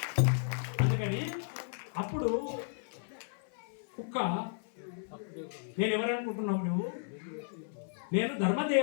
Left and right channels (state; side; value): silent; right; 55 dB below the other